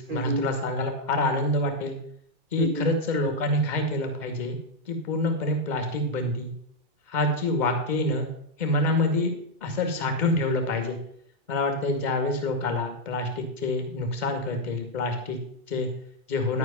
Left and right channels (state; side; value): late; left; 2.0 ms